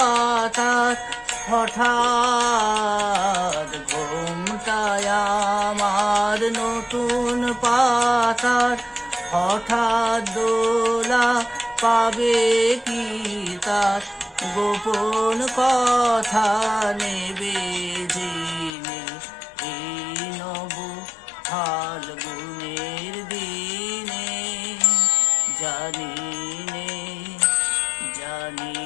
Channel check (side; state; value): right; drops out; at 18.7 s